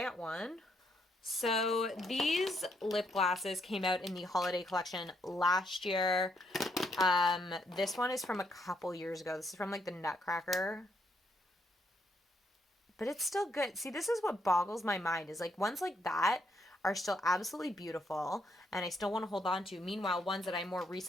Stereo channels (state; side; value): normal; both; correlation 0.74